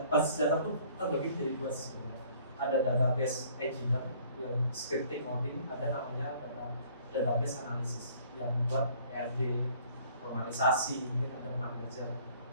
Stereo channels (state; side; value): inverted; both; correlation -0.56